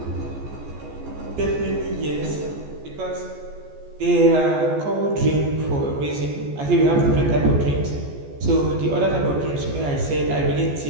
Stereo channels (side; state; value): left; late; 14 ms